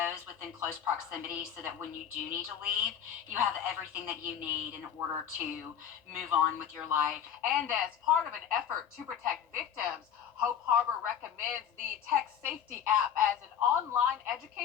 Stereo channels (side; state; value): right; quieter; 9.0 dB